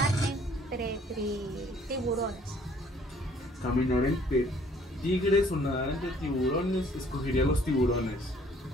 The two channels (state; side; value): normal; both; correlation 0.59